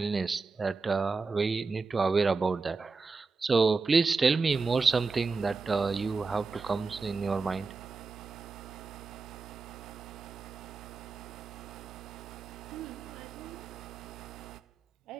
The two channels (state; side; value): quieter; left; 4.3 dB